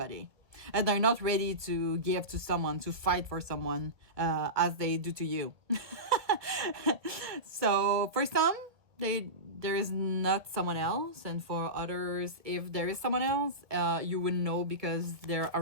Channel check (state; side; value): late; left; 1.6 ms